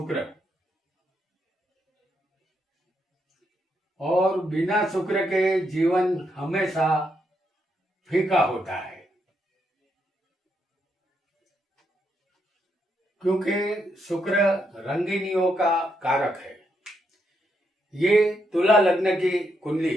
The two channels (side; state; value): both; normal; correlation 0.79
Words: और बिना शुक्र के जीवन हमेशा फीका होता है, क्योंकि शुक्र रंगीनियों का कारक है। ये तुला लग्न की कुंडली